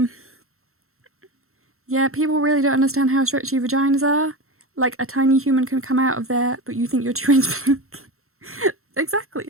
Yeah, people really don't understand how stretchy vaginas are. Like, a tiny human can come out of there, but you think you're 2 inches big.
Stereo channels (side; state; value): left; late; 0.63 ms